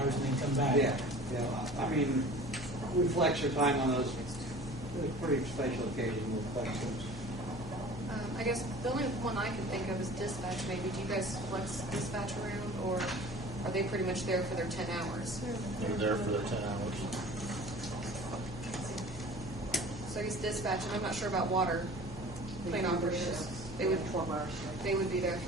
and then come back. Yeah. I mean, we flex our time on those pretty special occasions. We'll flex those. I guess the only one I can think of is dispatch. Maybe do you guys flex dispatch around, or are they pretty much there for their 10 hours? They're there for their 10 hours. So I guess dispatch, and I'm not sure about water plane operators. They would 12-hour shift. They would be there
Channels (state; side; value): noise; left; hum, 13 dB below the sound